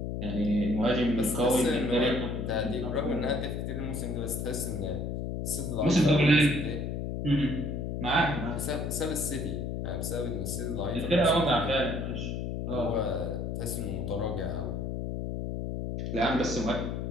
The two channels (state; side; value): noise; left; hum, 3 dB below the sound